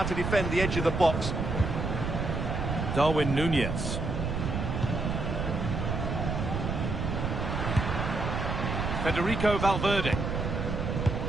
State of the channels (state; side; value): noise; right; rumble, 2 dB below the sound